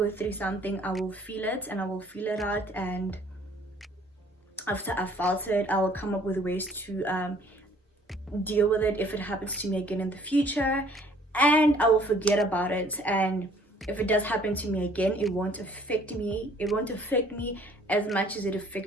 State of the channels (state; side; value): normal; both; correlation 0.57